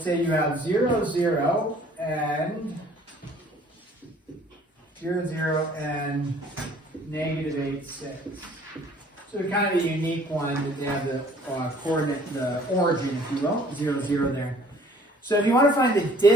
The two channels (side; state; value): both; normal; correlation 0.55